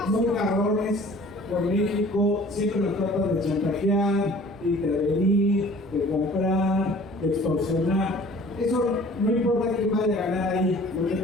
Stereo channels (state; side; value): normal; both; correlation 0.49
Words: muy cabrones con México, siempre nos tratan de chantajear, de intervenir, de comprar, de extorsionar. Eso no importa quién vaya a ganar ahí. Lo que